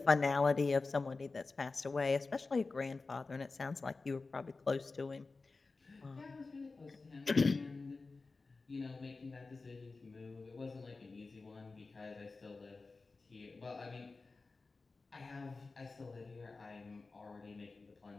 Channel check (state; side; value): quieter; right; 3.9 dB